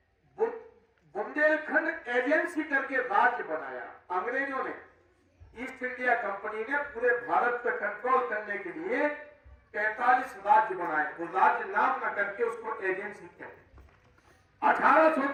बुंदेलखंड एजेंसी करके राज्य बनाया। अंग्रेजों ने, ईस्ट इंडिया कंपनी ने पूरे भारत पर कंट्रोल करने के लिए 45 राज्य बनाए। वो राज्य नाम न करके उसको एजेंसी कहते।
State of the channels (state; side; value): identical; both; correlation 1.00